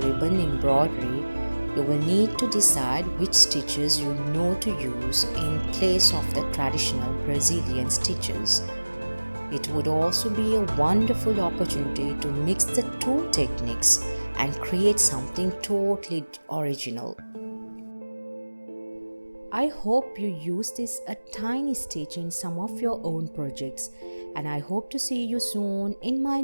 ribbon embroidery, you will need to decide which stitches you know to use in place of the traditional Brazilian stitches. It would also be a wonderful opportunity to mix the two techniques and create something totally original. I hope you use this a tiny stitch in some of your own projects, and I hope to see you soon in my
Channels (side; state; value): both; inverted; correlation -1.00